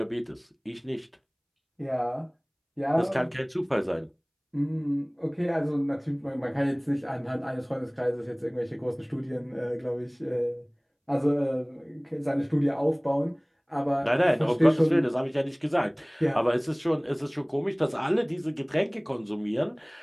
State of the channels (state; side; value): identical; both; correlation 1.00